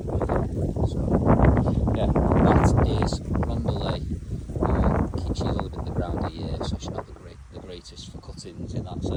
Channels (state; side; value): identical; both; correlation 1.00